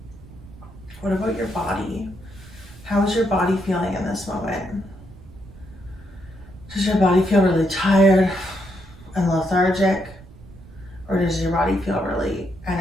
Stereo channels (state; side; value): noise; right; rumble, 20 dB below the sound